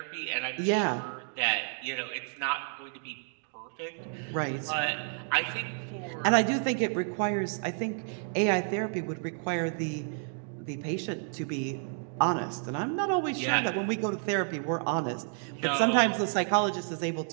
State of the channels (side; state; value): left; silent; 56 dB below the other